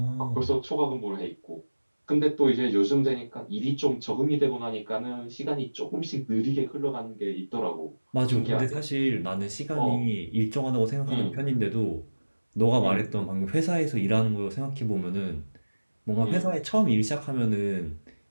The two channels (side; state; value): both; inverted; correlation -1.00